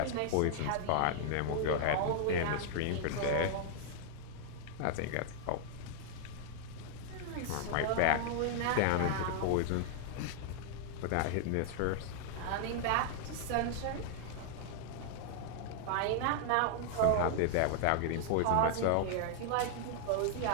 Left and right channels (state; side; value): different; both; correlation 0.00